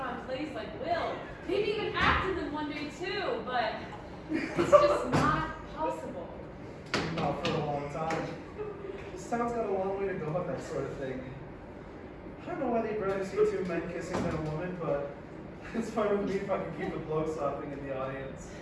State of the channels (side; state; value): both; identical; correlation 1.00